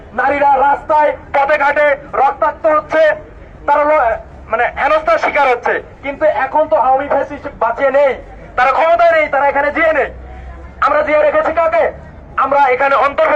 নারীরা রাস্তায় পথে ঘাটে রক্তাক্ত হচ্ছে, তারা মানে হেনস্থার শিকার হচ্ছে। কিন্তু এখন তো আওয়ামী ফ্যাসিস্ট বাঁচিয়ে নেই, তারা ক্ষমতায় নেই, তারা এখানে জিয়ে নেই। আমরা জিয়ে রেখেছি কাকে? আমরা এখানে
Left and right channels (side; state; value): both; identical; correlation 1.00